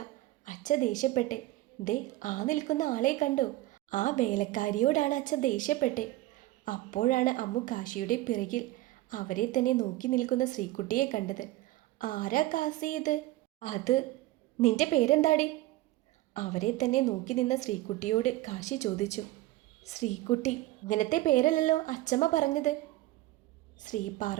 അച്ഛ ദേഷ്യപ്പെട്ടെ. ദേ, ആ നിൽക്കുന്ന ആളെ കണ്ടോ? ആ വേലക്കാരിയോടാണ് അച്ഛ ദേഷ്യപ്പെട്ടെ. അപ്പോഴാണ് അമ്മു കാശിയുടെ പിറകിൽ അവരെ തന്നെ നോക്കി നിൽക്കുന്ന ശ്രീകുട്ടിയെ കണ്ടത്. ആരാ കാസി ഇത്? അത് നിന്റെ പേരെന്താടി? അവരെ തന്നെ നോക്കി നിന്ന ശ്രീകുട്ടിയോട് കാശി ചോദിച്ചു. ശ്രീകുട്ടി, ഇങ്ങനത്തെ പേരല്ലല്ലോ അച്ചമ്മ പറഞ്ഞത്. ശ്രീ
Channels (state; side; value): quieter; left; 17.3 dB